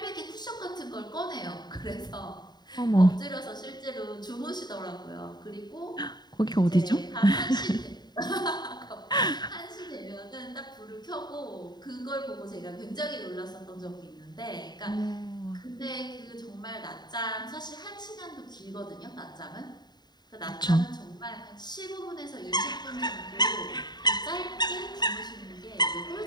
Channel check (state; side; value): late; right; 0.20 ms